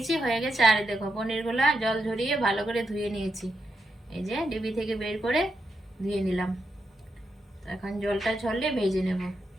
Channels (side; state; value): both; normal; correlation 0.85